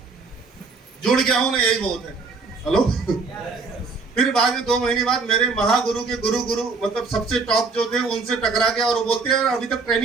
जुड़ गया हूं ना, यही बहुत है। हेलो। फिर बाद में 2 महीने बाद मेरे महागुरु के गुरु मतलब सबसे टॉप जो थे उनसे टकरा गया। और वो बोलते हैं अभी तक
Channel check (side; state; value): left; quieter; 4.3 dB